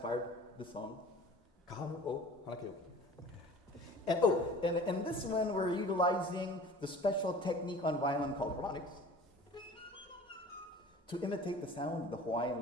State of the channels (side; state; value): both; normal; correlation 0.44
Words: this song, Kahano o Hana Keoki. And this one we're utilizing the special technique on violin called harmonics to imitate the sound of the Hawaiian